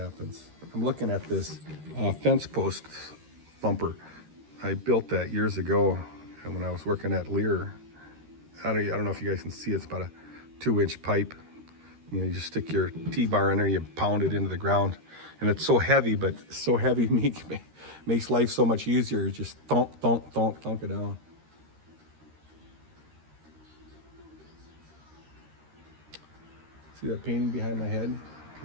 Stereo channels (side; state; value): left; late; 13 ms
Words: I'm looking at this fence post thumper. I built that years ago, and when I was working at Lear, I don't know if you guys can see. It's about a 2-inch pipe. You just stick your T-bar in there, you pound it into the ground, and it's so heavy, but so heavy makes life so much easier. You just thunk it down. See that painting behind my head?